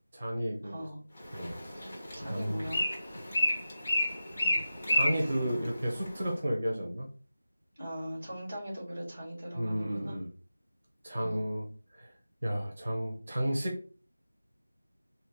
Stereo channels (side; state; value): both; inverted; correlation -0.93